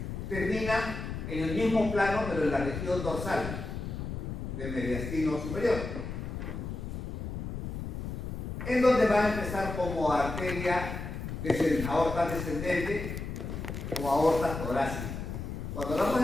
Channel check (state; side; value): noise; left; rumble, 6 dB below the sound